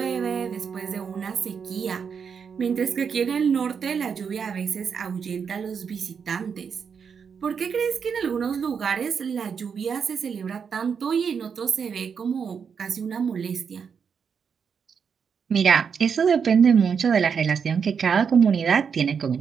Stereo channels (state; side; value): quieter; left; 6.5 dB